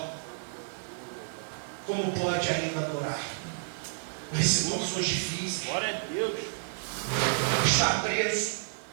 como pode ainda adorar? Nas situações difíceis. Glória a Deus. Está preso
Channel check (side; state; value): left; silent; digital silence